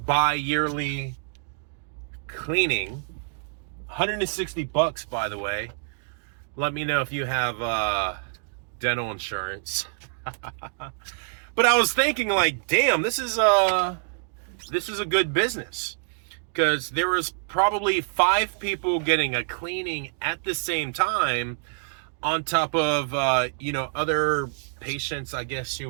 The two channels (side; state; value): left; silent; digital silence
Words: bi-yearly cleaning. $160, by the way. Let me know if you have dental insurance. But I was thinking, like, damn, this is a good business, because there was probably 5 people getting a cleaning at the same time, on top of other patients, I guess you